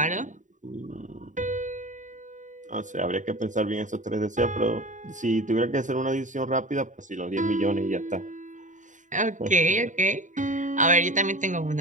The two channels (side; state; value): left; late; 0.36 ms